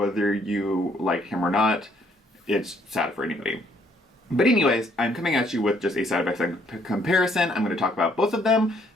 you like him or not, it's sad for anybody. But anyways, I'm coming at you with just a side-by-side comparison. I'm going to talk about both of them.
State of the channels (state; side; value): normal; both; correlation 0.67